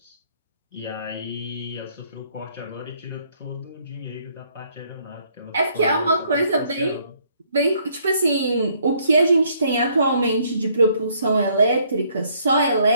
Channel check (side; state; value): both; inverted; correlation -0.67